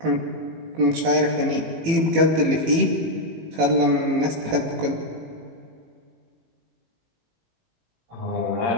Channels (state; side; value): late; left; 18 ms